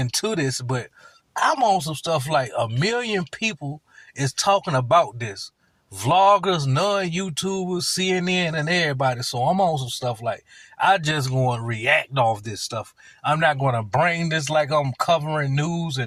this, but I'm on some stuff like 1 million people is talking about this. Vloggers, non-YouTubers, CNN, and everybody. So I'm on some stuff like, I just going to react off this stuff. I'm not going to bring this like I'm covering news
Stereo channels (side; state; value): both; identical; correlation 1.00